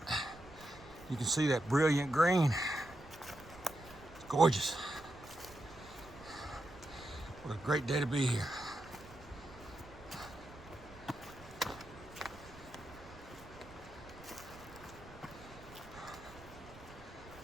You can see that brilliant green. It's gorgeous. What a great day to be here.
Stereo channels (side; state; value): right; noise; rumble, 18 dB below the sound